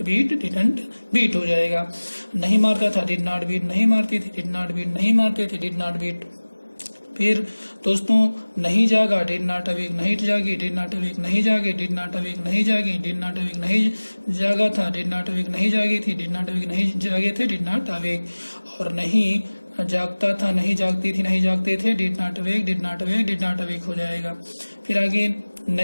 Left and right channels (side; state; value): both; inverted; correlation -1.00